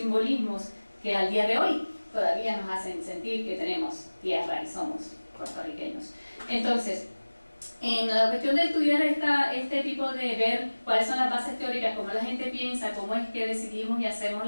que al día de hoy todavía nos hacen sentir que tenemos tierra y somos puertorriqueños. Entonces, en la cuestión de estudiar este tipo de ver cuáles son las bases teóricas, cómo la gente piensa, cómo es que decidimos y hacemos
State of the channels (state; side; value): inverted; both; correlation -1.00